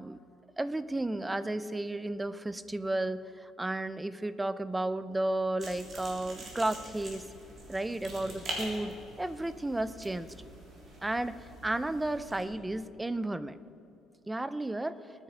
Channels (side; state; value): both; normal; correlation 0.96